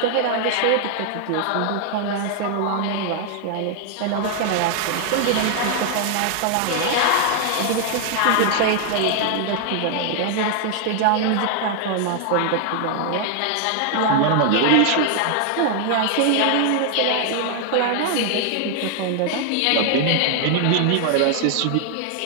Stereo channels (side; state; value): both; different; correlation 0.00